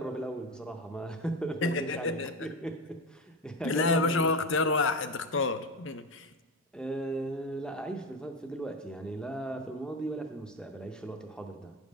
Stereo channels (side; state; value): both; normal; correlation 0.19